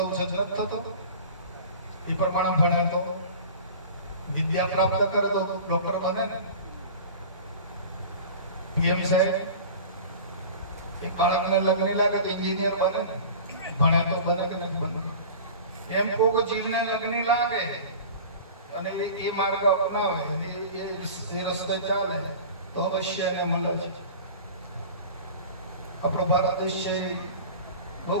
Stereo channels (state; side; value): inverted; both; correlation -0.38